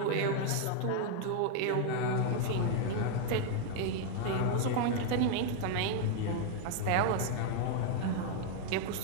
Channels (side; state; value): both; different; correlation 0.00